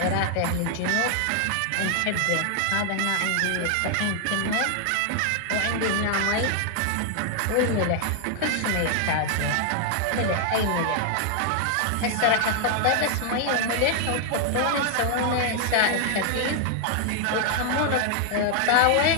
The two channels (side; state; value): both; different; correlation 0.00